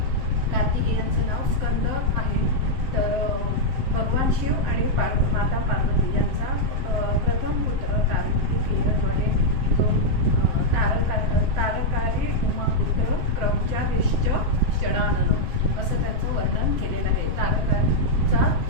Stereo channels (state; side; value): late; left; 7.7 ms